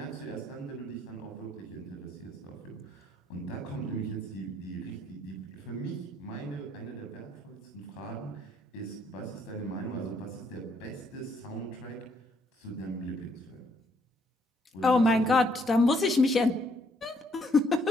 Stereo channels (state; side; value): normal; both; correlation 0.70